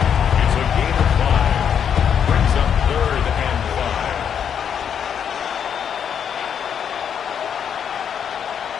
It's a gain of 5. Brings up third and 5.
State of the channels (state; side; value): quieter; right; 8.1 dB